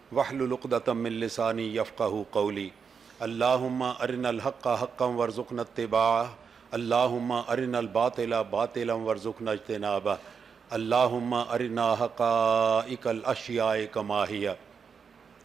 واحلل عقدۃ من لسانی یفقہوا قولی اللہم ارنا الحق حقا وارزقنا اتباعہ اللہم ارنا الباطل باطلا وارزقنا اجتنابہ اللہم ارنا حقائق الاشیاء کما ہی۔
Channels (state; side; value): quieter; left; 6.2 dB